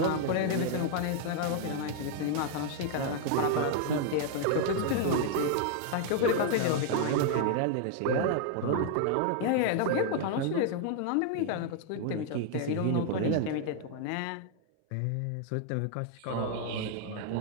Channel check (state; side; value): different; both; correlation 0.00